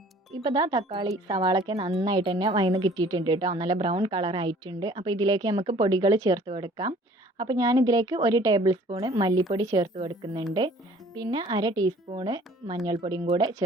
ഇപ്പോൾ ഇതാ തക്കാളി സവാളൊക്കെ നന്നായിട്ട് തന്നെ വഴന്ന് കിട്ടിയിട്ടുണ്ട് കേട്ടോ. നല്ല ബ്രൗൺ കളർ ആയിട്ടുണ്ട്. അപ്പോൾ ഇതിലേക്ക് നമുക്ക് പൊടികൾ ചേർത്ത് കൊടുക്കാം. അപ്പോൾ ഞാനിതിലേക്ക് 1 ടേബിൾ സ്പൂൺ മല്ലിപ്പൊടി ചേർത്ത് കൊടുക്കുന്നുണ്ട്. പിന്നെ 1/2 ടീസ്പൂണ് മഞ്ഞൾപ്പൊടിയും കൂടെ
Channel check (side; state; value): both; normal; correlation 0.53